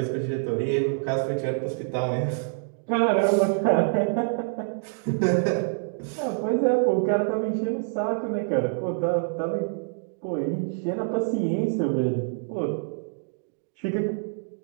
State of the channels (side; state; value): left; silent; digital silence